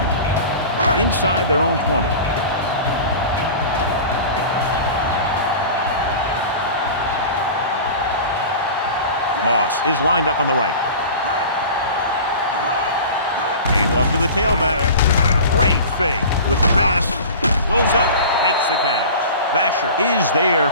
Inside their own 20. Moss is lined up on the right. Hand off to the tailback. Great fake with the pass. Goes up, makes the catch. Basher is there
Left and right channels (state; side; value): inverted; both; correlation -0.36